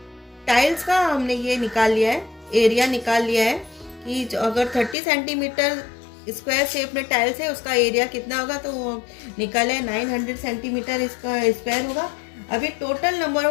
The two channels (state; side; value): drops out; right; at 5.0 s